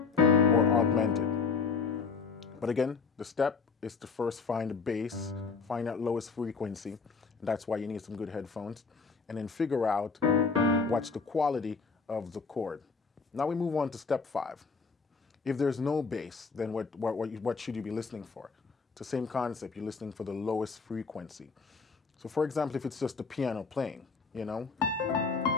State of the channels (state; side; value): quieter; right; 5.0 dB